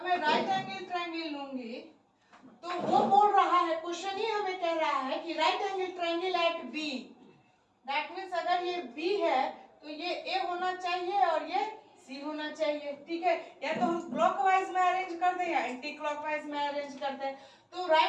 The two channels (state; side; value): identical; both; correlation 1.00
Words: मैं राइट एंगल ट्रायंगल लूंगी तो वो बोल रहा है, क्वेश्चन ही हमें कह रहा है कि right angle triangle at B, that means अगर ये बी है तो ये ए होना चाहिए और ये सी होना चाहिए, ठीक है। या तो हम क्लॉकवाइज में अरेंज कर दें या एंटी क्लॉकवाइज में अरेंज कर दें। तो